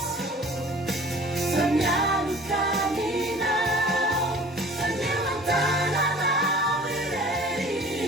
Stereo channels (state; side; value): normal; both; correlation 0.46